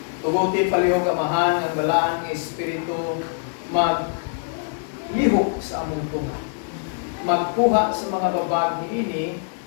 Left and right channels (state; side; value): silent; right; digital silence